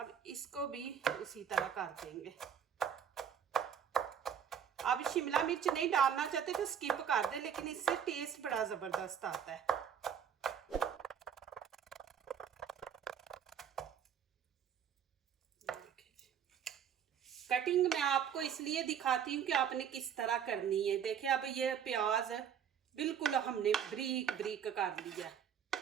इसको भी उसी तरह कर देंगे। अब शिमला मिर्च नहीं डालना चाहते तो स्किप कर दे, लेकिन इससे टेस्ट बड़ा ज़बरदस्त आता है। कटिंग मैं आपको इसलिए दिखाती हूँ कि आपने किस तरह करनी है। देखिए अब ये प्याज बिल्कुल हमने बारीक बारीक कर लिया।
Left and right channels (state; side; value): quieter; left; 8.3 dB